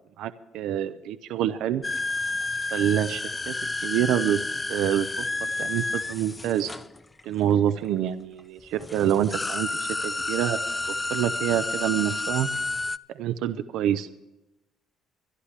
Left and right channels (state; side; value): quieter; left; 5.3 dB